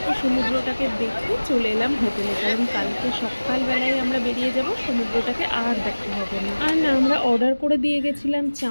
সমুদ্রটাকে দেখে চলে এলাম হোটেলে, কারণ কালকে সকালবেলায় আমরা বেরিয়ে যাব, সমুদ্রটাকে আর দেখা হবে না। আর না, আমরা অর্ডার করে দিয়ে গেছিলাম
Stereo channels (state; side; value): inverted; both; correlation -1.00